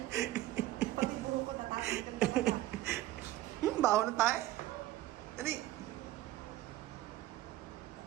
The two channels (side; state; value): left; quieter; 15.2 dB